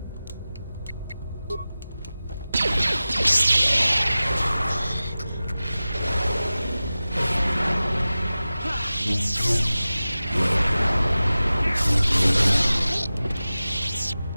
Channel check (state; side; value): inverted; both; correlation -0.96